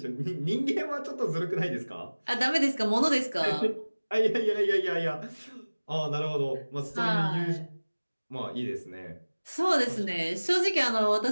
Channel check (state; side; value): inverted; both; correlation -1.00